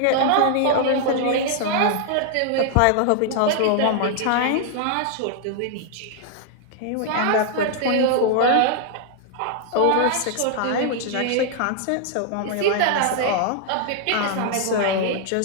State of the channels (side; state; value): both; different; correlation -0.01